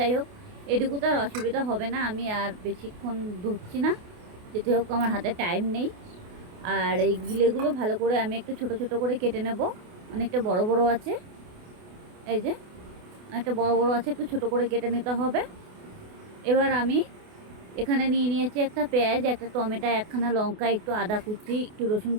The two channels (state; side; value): late; left; 28 ms